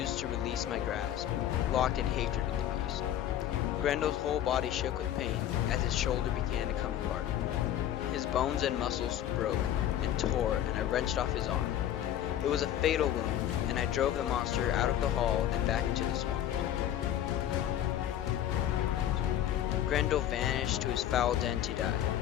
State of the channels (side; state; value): right; quieter; 11.2 dB